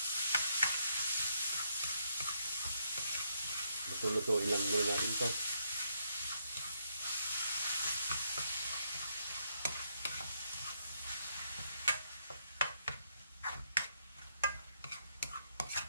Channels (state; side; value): inverted; both; correlation -0.76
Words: Luto-lutuin lang muna natin ito.